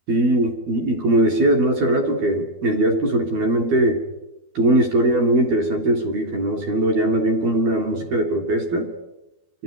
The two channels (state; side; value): late; left; 12 ms